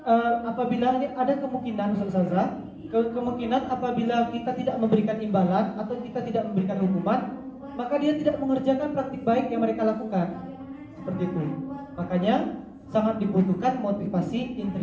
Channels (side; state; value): both; identical; correlation 1.00